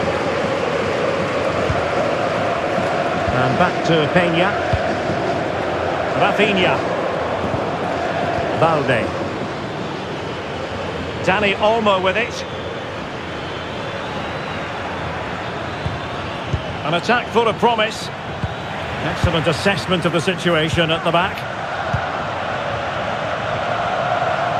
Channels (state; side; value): identical; both; correlation 1.00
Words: And back to Peña. Rafinha. Balde. Dani Olmo with it. An attack full of promise. Excellent assessment of the situation at the back.